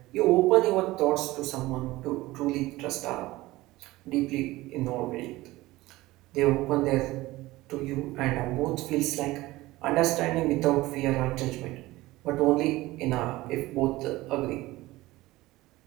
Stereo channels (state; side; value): quieter; left; 18.7 dB